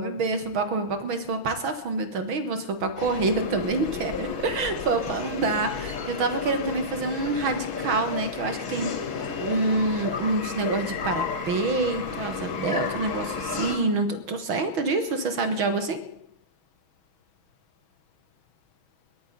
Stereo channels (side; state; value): left; late; 6.2 ms